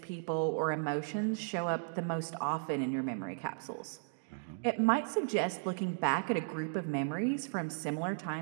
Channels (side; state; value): left; silent; digital silence